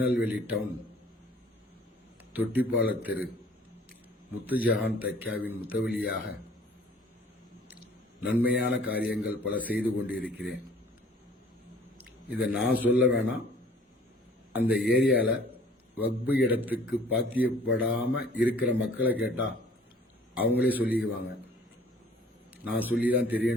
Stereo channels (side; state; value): both; normal; correlation 0.53